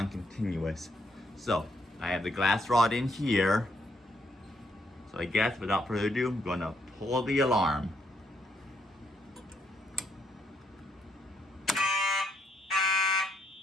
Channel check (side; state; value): both; normal; correlation 0.75